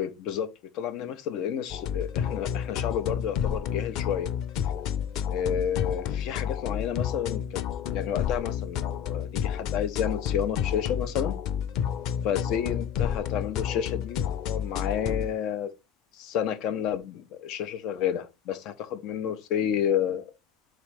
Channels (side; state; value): right; quieter; 8.6 dB